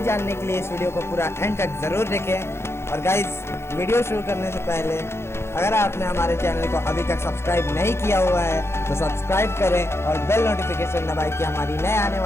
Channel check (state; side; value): late; right; 0.12 ms